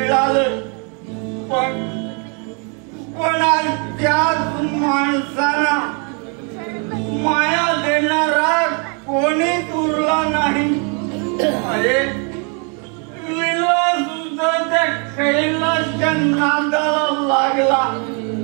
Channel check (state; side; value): quieter; left; 37.2 dB